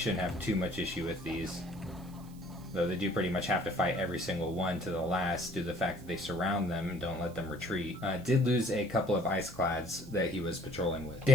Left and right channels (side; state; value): right; noise; hiss, 24 dB below the sound